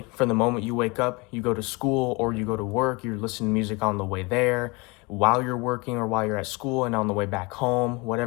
from the moment you wake up, you go to school or you go to work, you're listening to music on the way there, while you're working or while you're at school, and on the way back home,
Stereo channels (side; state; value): right; quieter; 26.8 dB